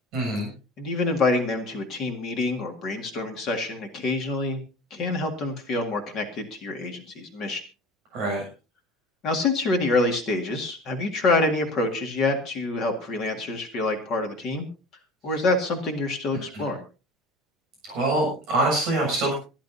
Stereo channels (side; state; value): both; normal; correlation 0.38